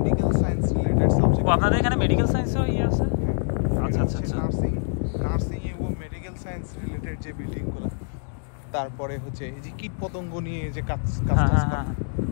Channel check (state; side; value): silent; right; digital silence